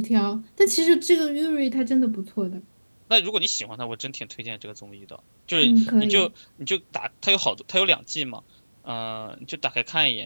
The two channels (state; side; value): inverted; both; correlation -1.00